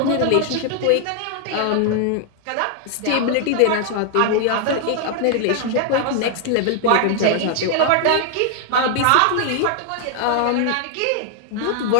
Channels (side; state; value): both; different; correlation 0.00